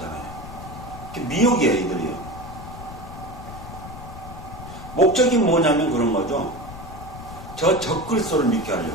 미혹이에요, 이들이요. 목적이 뭐냐면 그런 거죠. 저 적그리스도를 믿게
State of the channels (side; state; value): left; noise; rumble, 12 dB below the sound